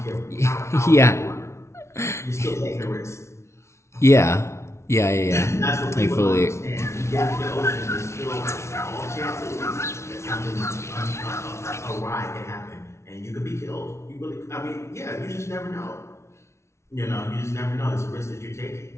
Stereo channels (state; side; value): late; right; 0.13 ms